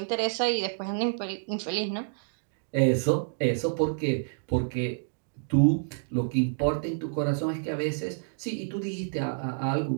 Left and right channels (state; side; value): silent; left; digital silence